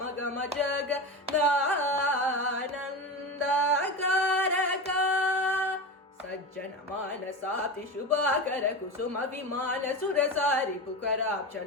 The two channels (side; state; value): both; normal; correlation 0.24